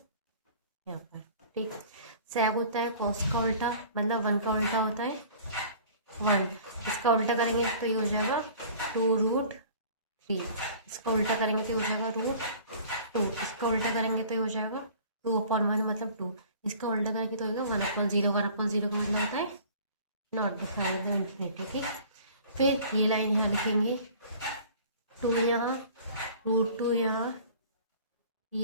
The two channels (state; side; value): inverted; both; correlation -0.47